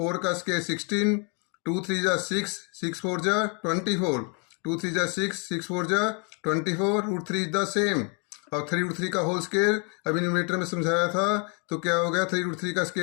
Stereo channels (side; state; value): right; quieter; 37.2 dB